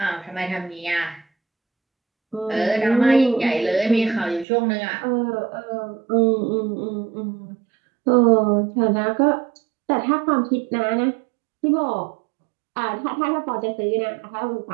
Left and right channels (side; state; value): left; drops out; at 4.5 s